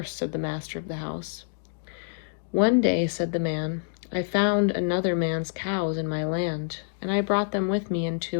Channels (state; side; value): silent; right; digital silence